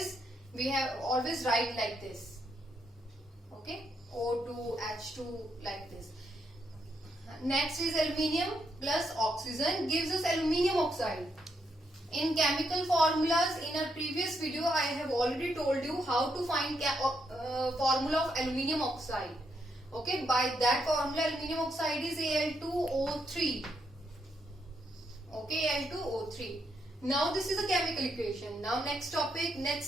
have always write like this. Okay, O2, H2, like this. Next is aluminium plus oxygen gives us aluminium oxide. In chemical formulas, in a previous video, I have already told you how to find formula of aluminium oxide. Okay, by that formula, aluminium oxide is Al2O3. Okay, Al2O3. Now this is a chemical equation. Now next step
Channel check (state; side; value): normal; both; correlation 0.78